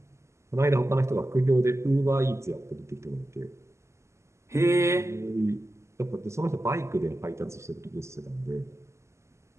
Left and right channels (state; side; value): late; left; 0.13 ms